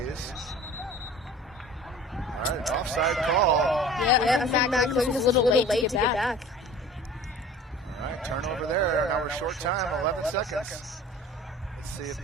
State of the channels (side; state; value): both; normal; correlation 0.43